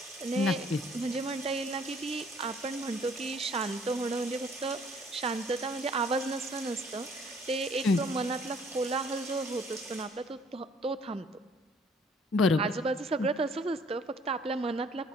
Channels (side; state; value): both; normal; correlation 0.59